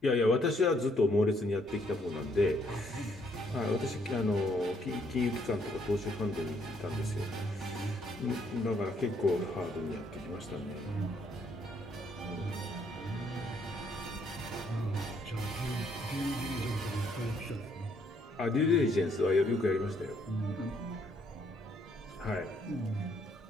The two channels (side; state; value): both; normal; correlation 0.69